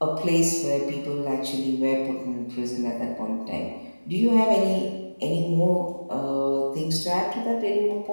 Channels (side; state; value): both; inverted; correlation -1.00